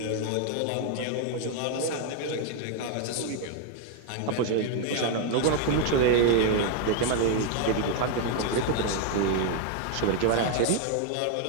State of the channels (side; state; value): both; different; correlation 0.00